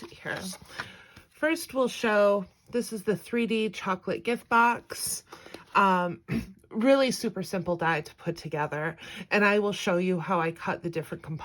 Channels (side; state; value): both; identical; correlation 1.00